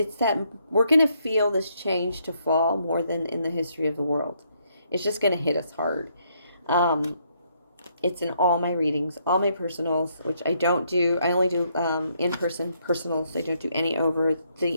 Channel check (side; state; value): both; inverted; correlation -0.73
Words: that we're going to feel this change to fall more than in the history of the world. It's just going to hit us hard. It's in all my readings, all my personals, which I don't do. I only do in-person personals. I don't do any over